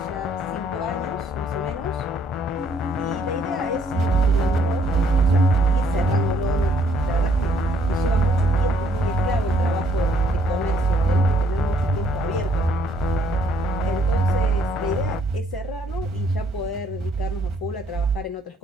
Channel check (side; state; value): both; normal; correlation 0.66